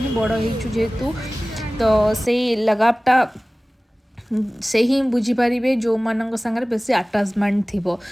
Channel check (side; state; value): both; normal; correlation 0.98